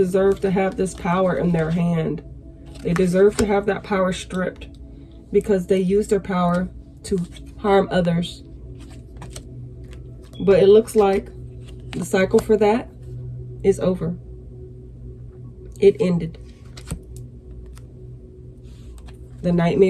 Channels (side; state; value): both; identical; correlation 1.00